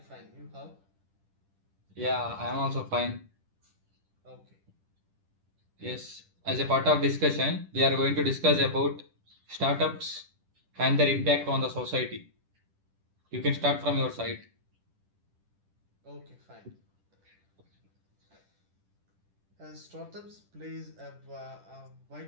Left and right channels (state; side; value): late; left; 10 ms